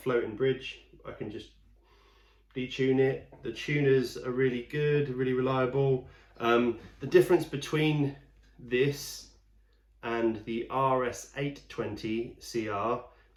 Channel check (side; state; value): both; identical; correlation 1.00